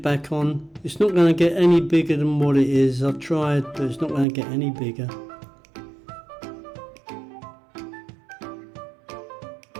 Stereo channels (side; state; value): left; drops out; at 4.2 s